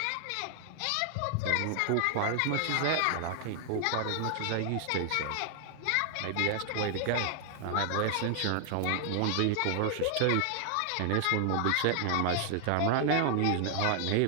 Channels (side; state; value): both; different; correlation 0.00